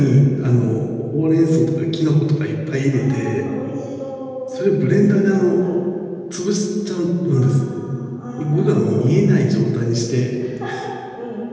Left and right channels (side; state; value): both; identical; correlation 1.00